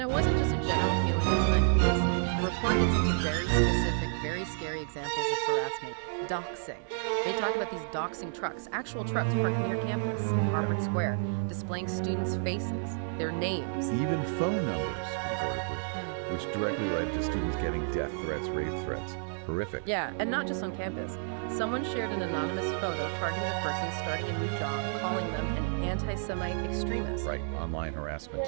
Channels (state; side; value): silent; left; digital silence